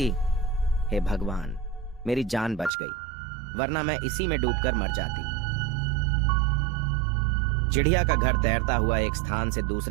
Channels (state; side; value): drops out; left; at 2.7 s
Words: हे भगवान, मेरी जान बच गई, वरना मैं इसी में डूबकर मर जाती। चिड़िया का घर तैरता हुआ एक स्थान से